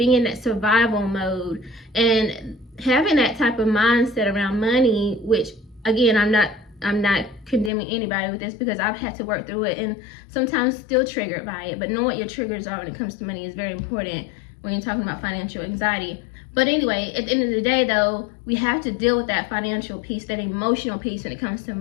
in that survival mode, and having that type of mindset around money, which again, I'm not condemning anybody with this, because I've had to work through it and sometimes still triggered by it. But knowing what your triggers are when it comes to money is very important when you're talking about financial anxiety. But anyway, at the end of the day though, we have to deal with that financial piece, that emotional piece when it comes to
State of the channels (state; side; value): drops out; right; at 7.7 s